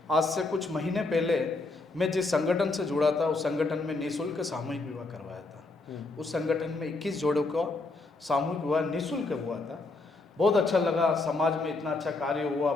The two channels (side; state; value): right; quieter; 3.4 dB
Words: आज से कुछ महीने पहले, मैं जिस संगठन से जुड़ा था उस संगठन में निःशुल्क सामूहिक विवाह करवाया था। उस संगठन में 21 जोड़ों का सामूहिक विवाह निःशुल्क हुआ था। बहुत अच्छा लगा, समाज में इतना अच्छा कार्य हुआ,